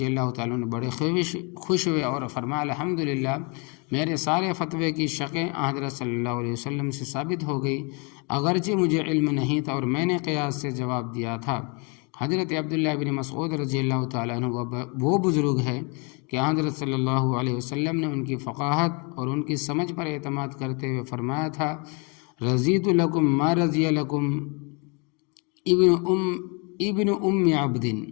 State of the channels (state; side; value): quieter; right; 32.9 dB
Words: اللہ تعالیٰ عنہ بڑے خوش ہوئے اور فرمایا الحمدللہ، میرے سارے فتوے کی شقیں حضرت صلی اللہ علیہ وسلم سے ثابت ہو گئی، اگرچہ مجھے علم نہیں تھا اور میں نے قیاس سے جواب دیا تھا۔ حضرت عبداللہ ابن مسعود رضی اللہ تعالیٰ عنہ وہ بزرگ ہے کہ حضرت صلی اللہ علیہ وسلم نے ان کی فقاہت اور ان کی سمجھ پر اعتماد کرتے ہوئے فرمایا تھا، رضیت لکم ما رضی لکم ابن ام عبد،